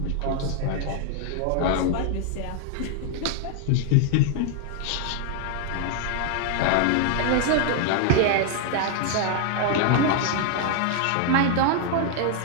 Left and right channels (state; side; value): different; both; correlation 0.00